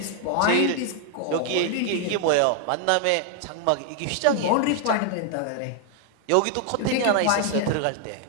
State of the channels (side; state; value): both; different; correlation 0.00